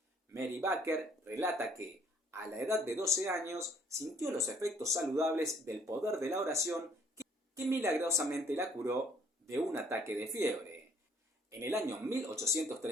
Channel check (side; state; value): both; normal; correlation 0.62